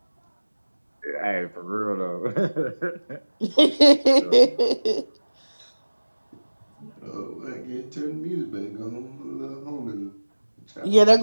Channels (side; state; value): both; inverted; correlation -1.00